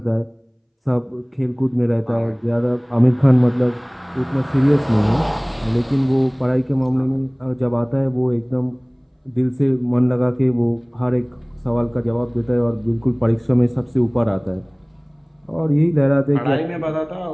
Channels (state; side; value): identical; both; correlation 1.00